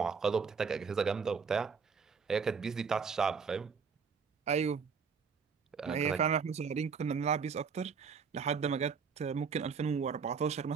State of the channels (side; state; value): left; quieter; 5.8 dB